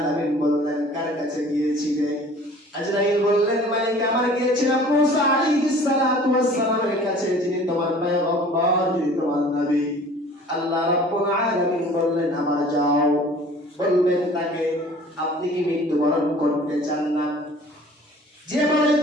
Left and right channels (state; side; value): normal; both; correlation 0.48